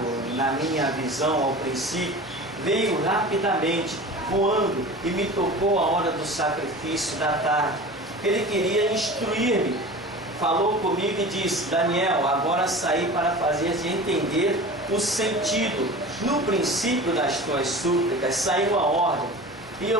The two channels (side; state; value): both; normal; correlation 0.36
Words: na minha visão ao princípio, veio rapidamente, voando, e me tocou a hora do sacrifício da tarde. Ele queria instruir-me, falou comigo e disse, Daniel, agora saí para fazer-te entender o sentido. No princípio das tuas súplicas saiu a ordem, e